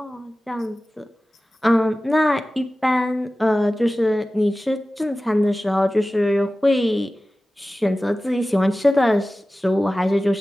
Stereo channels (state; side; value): normal; both; correlation 0.96